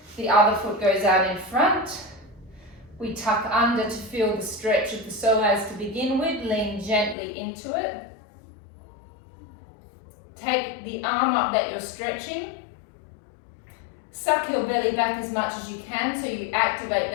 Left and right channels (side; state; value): right; drops out; at 7.2 s